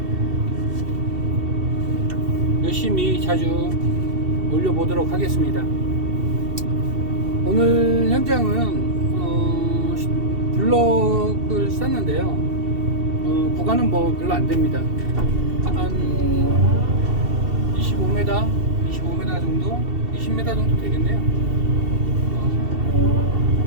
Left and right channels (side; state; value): left; late; 2.7 ms